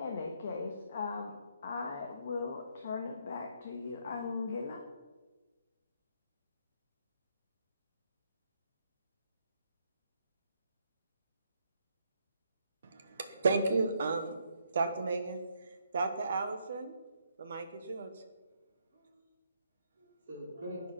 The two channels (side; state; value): both; inverted; correlation -0.73